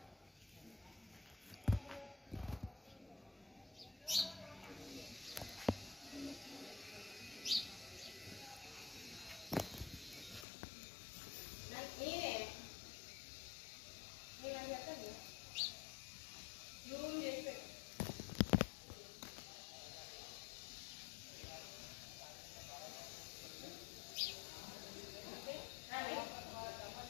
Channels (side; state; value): right; drops out; at 10.5 s